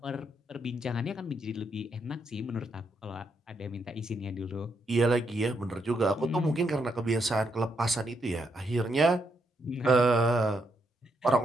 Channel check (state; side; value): normal; both; correlation 0.78